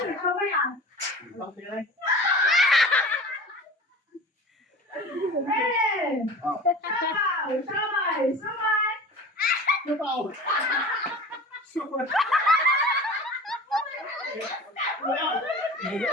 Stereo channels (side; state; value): both; normal; correlation 0.37